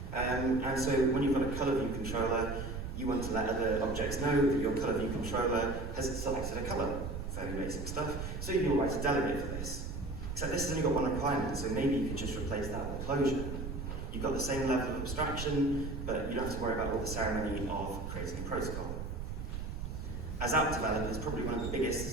And so when you've got a color view controller, you want to let other objects know that your color view controller has selected a color. Fairly basic stuff. So you'll write a delegate for this. Except this has only got one requirement, so maybe you could just replace that with a closure. You've got the same level of abstraction, but you don't have to worry about all the ceremony of creating a protocol. As app developers, probably one of the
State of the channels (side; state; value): right; noise; rumble, 6 dB below the sound